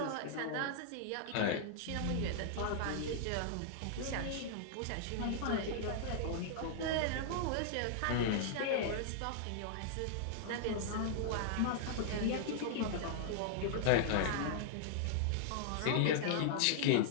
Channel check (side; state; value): both; different; correlation -0.01